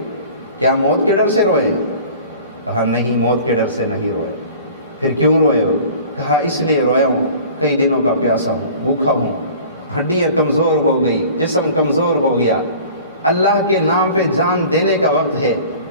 کیا موت کے ڈر سے روئے؟ کہا نہیں، موت کے ڈر سے نہیں روئے۔ پھر کیوں روئے ہو؟ کہا اس لیے رویا ہوں، کئی دنوں کا پیاسا ہوں، بھوکھا ہوں، ہڈیاں کمزور ہو گئی، جسم کمزور ہو گیا، اللہ کے نام پہ جان دینے کا وقت ہے،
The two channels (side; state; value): both; inverted; correlation -0.45